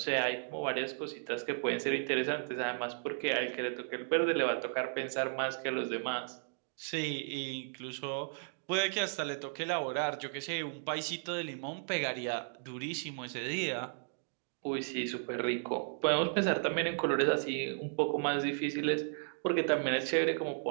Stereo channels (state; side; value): silent; left; digital silence